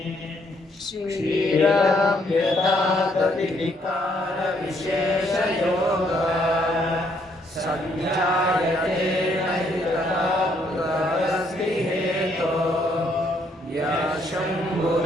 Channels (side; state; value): both; normal; correlation 0.70